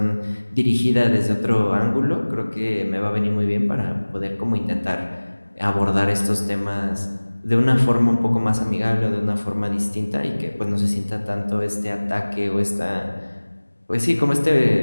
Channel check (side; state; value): both; inverted; correlation -1.00